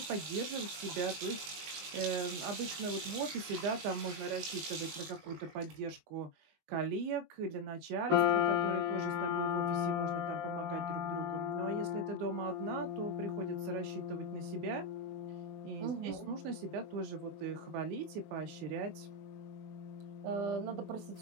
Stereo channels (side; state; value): left; late; 19 ms